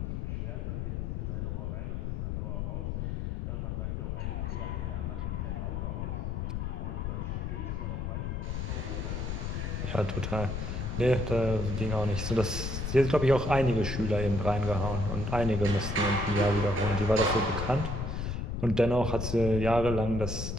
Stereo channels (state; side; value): noise; left; rumble, 2 dB below the sound